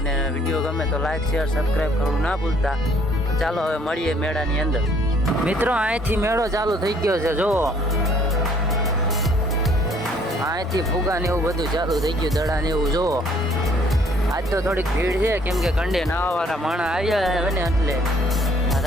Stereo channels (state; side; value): normal; both; correlation 0.62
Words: વિડીયો ગમે તો લાઈક શેર સબસ્ક્રાઈબ કરવું ના ભૂલતા. ચાલો હવે મળીએ મેળાની અંદર. મિત્રો, અહીંથી મેળો ચાલુ થઈ ગયો છે. જુઓ, અહીંથી ફુગા ને એવું બધું ચાલુ થઈ ગયું, દડા ને એવું. જુઓ, આજ તો થોડીક ભીડ છે કેમ કે કંડે નાવાવાળા માણસ આવ્યા હોય ને એટલે